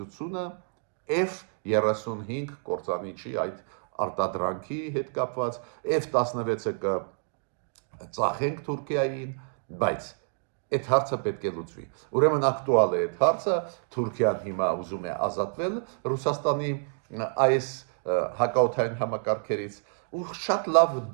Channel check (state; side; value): silent; left; 59 dB below the other